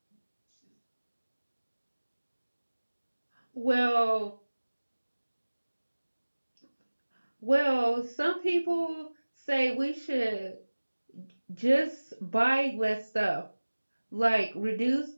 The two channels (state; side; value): inverted; both; correlation -1.00